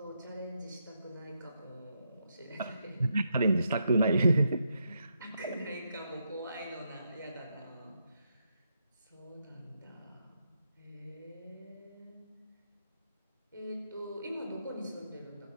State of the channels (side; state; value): both; inverted; correlation -0.81